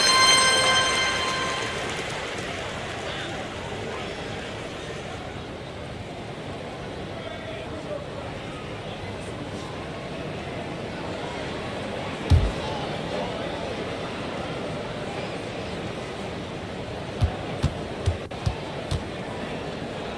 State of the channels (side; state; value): both; identical; correlation 1.00